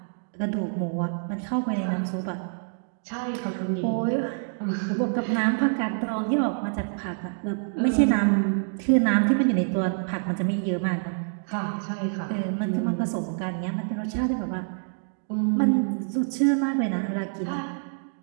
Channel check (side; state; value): left; silent; digital silence